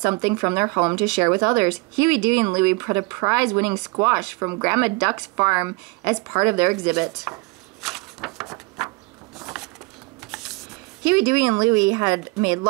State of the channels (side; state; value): left; quieter; 26.1 dB